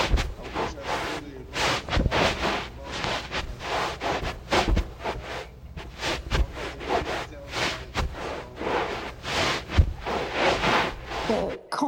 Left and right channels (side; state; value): both; identical; correlation 1.00